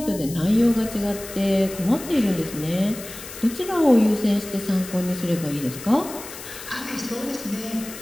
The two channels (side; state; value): left; noise; hiss, 13 dB below the sound